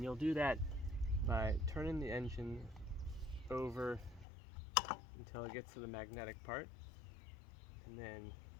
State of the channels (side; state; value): right; drops out; at 4.2 s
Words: you'll do that by turning the engine over until it gets to the magnetic part, and then